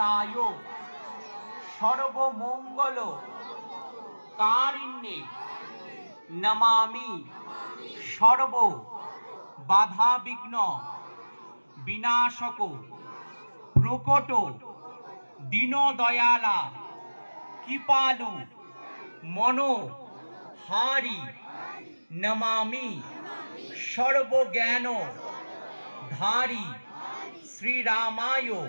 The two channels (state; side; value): inverted; both; correlation -1.00